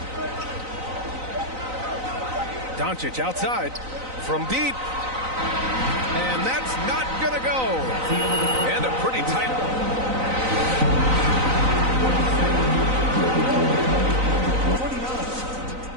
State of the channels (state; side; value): late; left; 3.9 ms